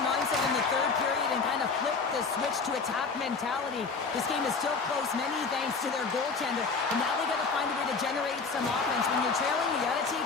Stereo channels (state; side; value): quieter; right; 4.7 dB